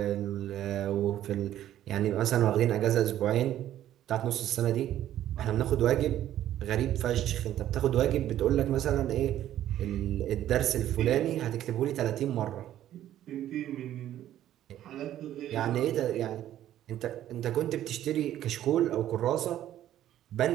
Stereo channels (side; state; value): left; quieter; 12.2 dB